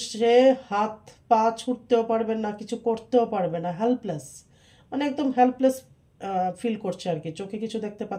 সে হাত পা ছুটতেও পারবে না, কিছু করতেও পারবে না, হেল্পলেস, মানে একদম হেল্পলেস ফিল করছে আর কি। চোখে কিছু দেখতে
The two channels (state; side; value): identical; both; correlation 1.00